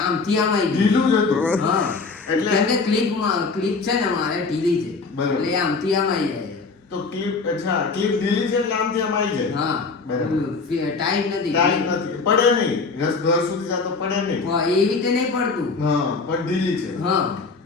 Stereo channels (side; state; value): right; quieter; 4.3 dB